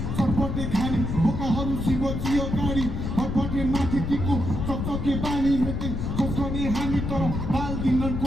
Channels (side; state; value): left; noise; rumble, 3 dB below the sound